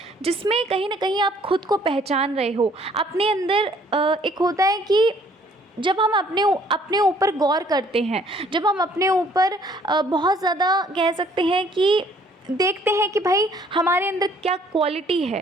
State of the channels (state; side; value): normal; both; correlation 0.60